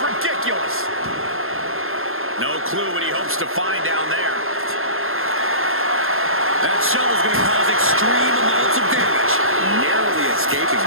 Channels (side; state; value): left; late; 0.61 ms